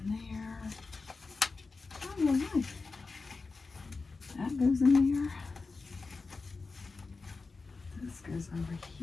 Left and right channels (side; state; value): right; quieter; 4.1 dB